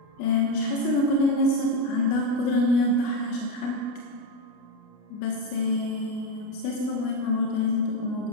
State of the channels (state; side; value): late; right; 29 ms